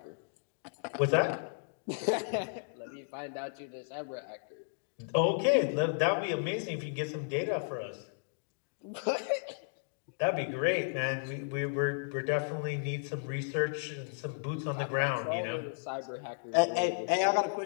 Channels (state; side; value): silent; right; digital silence